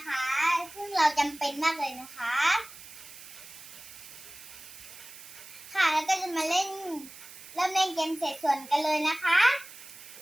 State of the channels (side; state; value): right; noise; hiss, 16 dB below the sound